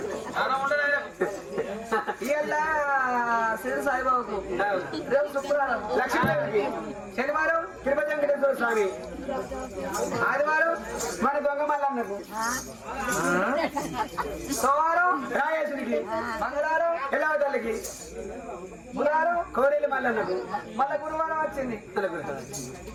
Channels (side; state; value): both; identical; correlation 1.00